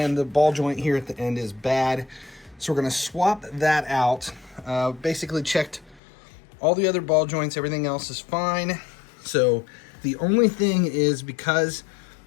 the ball joint here at the end is bad. So we're gonna swap that out. Basically checked all the other ball joints, everything else is fine. So the only thing is, because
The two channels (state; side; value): drops out; right; at 6.0 s